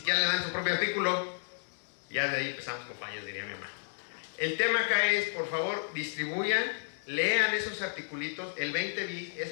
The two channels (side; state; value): right; silent; digital silence